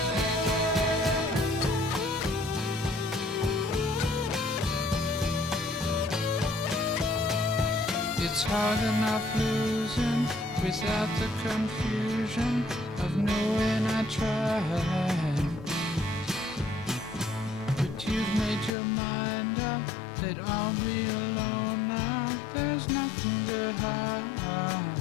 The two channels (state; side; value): drops out; right; at 18.7 s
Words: It's hard enough losing without the confusion of knowing I tried. But you've made your mind up that I'll be alone now. There's nothing to hide.